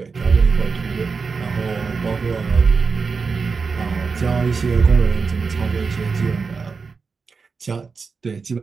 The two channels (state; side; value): quieter; left; 4.9 dB